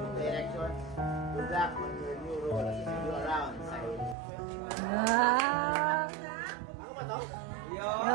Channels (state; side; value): drops out; left; at 4.2 s